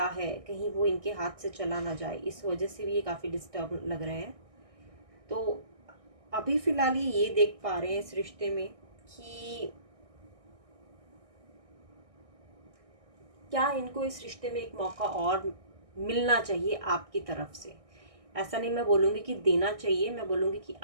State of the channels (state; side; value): late; left; 1.6 ms